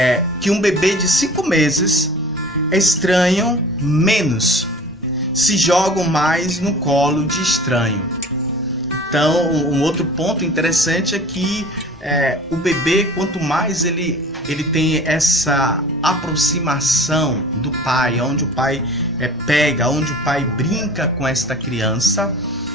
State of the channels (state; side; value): normal; both; correlation 0.43